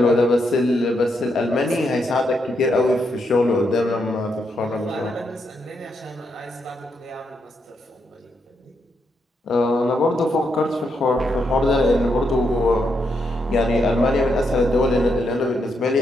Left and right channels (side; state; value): both; normal; correlation 0.80